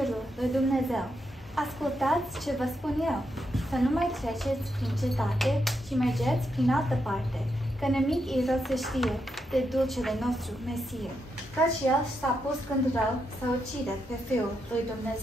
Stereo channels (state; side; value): normal; both; correlation 0.82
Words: lui Dumnezeu. Ascultați ce vă spun eu. Să nu mai treceți prin cetate și mergeți prin altă parte, că nimic e rău să știe de dulcele nostru Mesie, căci el s-a pus când rău să ucide pe Fiul lui